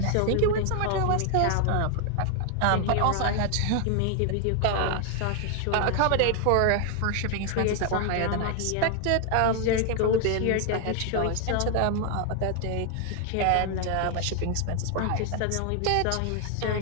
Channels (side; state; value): both; different; correlation 0.00